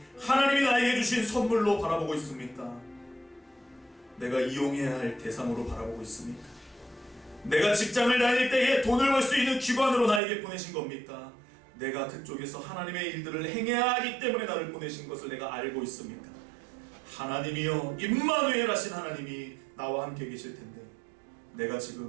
하나님이 나에게 주신 선물로 바라보고 있습니까? 내가 이용해야 할 대상으로 바라보고 있습니까? 내가 직장을 다닐 때에 돈을 벌 수 있는 기관으로 나에게 보내신 겁니까? 내가 그쪽에서 하나님의 일들을 행해야 하기 때문에 나를 보내신 것을 내가 알고 있습니까? 하나님이여, 임마누엘 하신 하나님이 나와 함께 계실 텐데 내가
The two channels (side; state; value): left; drops out; at 10.2 s